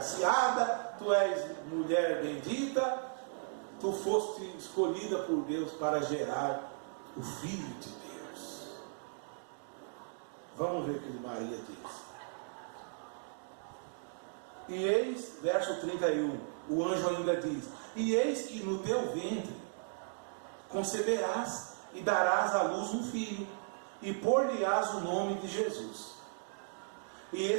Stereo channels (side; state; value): left; silent; digital silence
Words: tu és mulher bendita, tu foste escolhida por Deus para gerar o Filho de Deus. Vamos ver o que Maria diz. E eis, verso 31, o anjo ainda diz: e eis que no teu ventre conceberás e darás à luz um filho, e pôr-lhe-ás o nome de Jesus. E